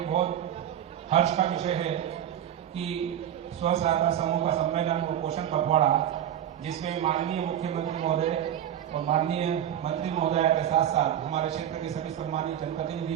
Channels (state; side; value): quieter; left; 10.5 dB